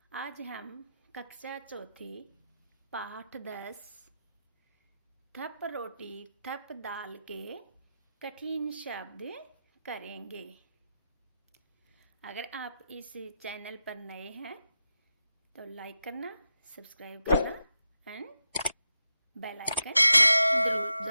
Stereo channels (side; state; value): both; inverted; correlation -0.89